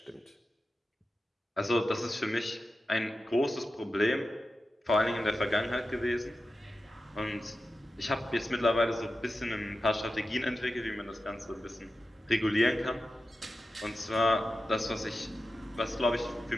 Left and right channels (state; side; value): normal; both; correlation 0.92